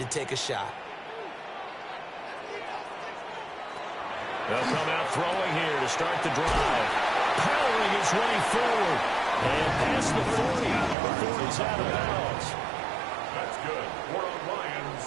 take a shot. They'll come out throwing here to start the drive. Powering his way forward. And past the 40 before he's out of bounds. That's good. For the Lions,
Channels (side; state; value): left; drops out; at 11.0 s